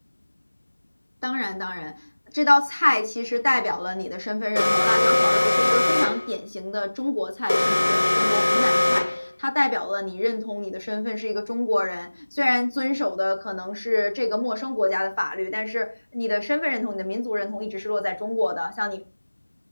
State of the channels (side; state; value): both; inverted; correlation -1.00